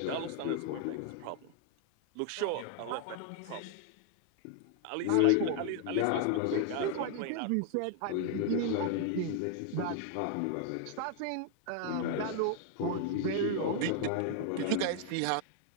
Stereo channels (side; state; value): both; different; correlation 0.00